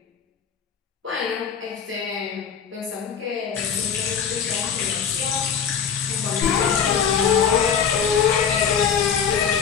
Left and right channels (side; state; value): right; quieter; 7.3 dB